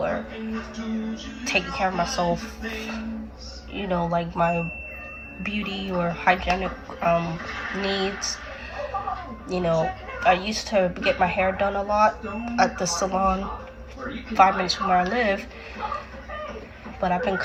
taking care of myself, you know, like my beauty or hygienic needs. You know, I used to get my hair done a lot at the salon 5 minutes from where I live, but I've been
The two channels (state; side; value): identical; both; correlation 1.00